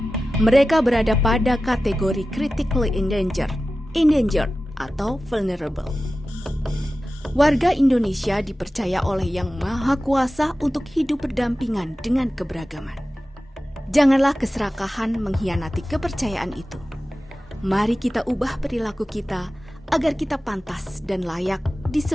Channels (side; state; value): both; normal; correlation 0.95